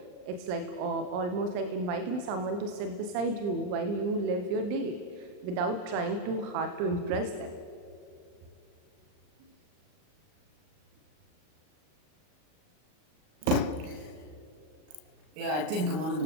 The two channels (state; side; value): late; left; 38 ms